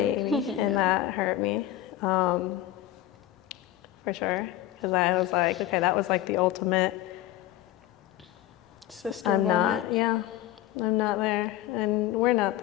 and that hurt me. for sure. Because I was like, okay, that was like the ultimate sister I'm moment. I'm not there, and we're not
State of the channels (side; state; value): right; quieter; 13.6 dB